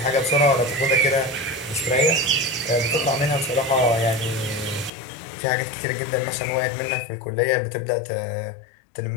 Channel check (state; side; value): drops out; right; at 4.9 s